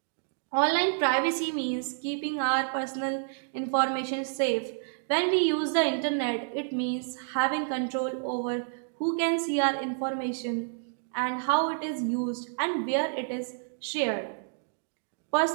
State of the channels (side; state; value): left; silent; digital silence